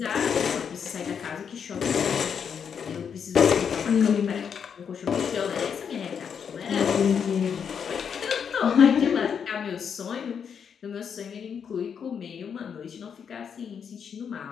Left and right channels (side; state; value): right; quieter; 7.2 dB